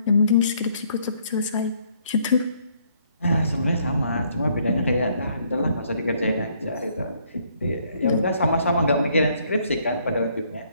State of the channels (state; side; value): inverted; both; correlation -0.67